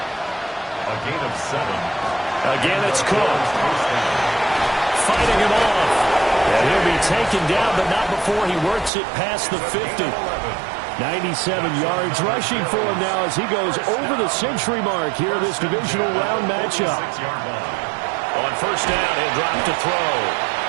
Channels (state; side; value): drops out; left; at 8.9 s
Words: a gain of 7. Again, it's Cook. Fighting him off. And he'll be taken down, but not before he works it past the 50. 97 yards rushing for him now as he goes over the century mark here in this divisional round matchup. On 1st down, he'll drop to throw.